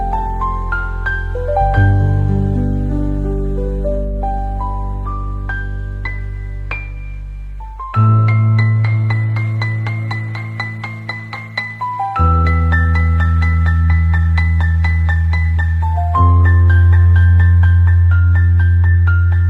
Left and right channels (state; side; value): identical; both; correlation 1.00